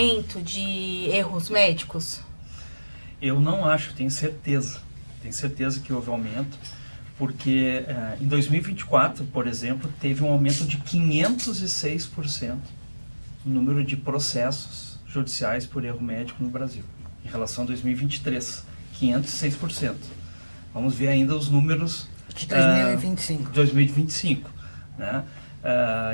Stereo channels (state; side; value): inverted; both; correlation -1.00